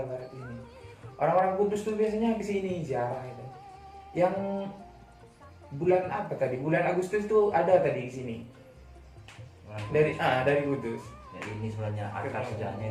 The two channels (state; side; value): identical; both; correlation 1.00